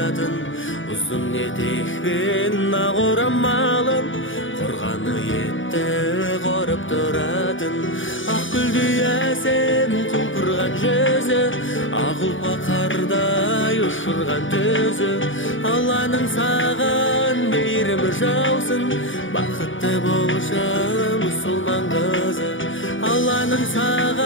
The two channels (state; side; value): late; right; 0.57 ms